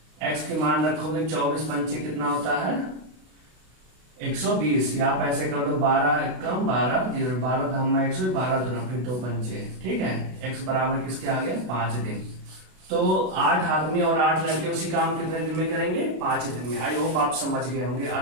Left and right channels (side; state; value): left; late; 32 ms